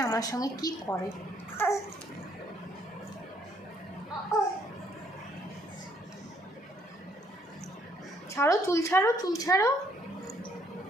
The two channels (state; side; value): normal; both; correlation 0.67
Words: আমার সঙ্গে কি করে। ছাড়ো, চুল ছাড়ো, চুল ছাড়ো।